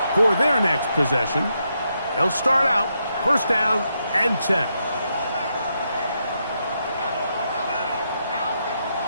for their next possession. They'll start out first down and 10.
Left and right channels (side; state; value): both; inverted; correlation -0.81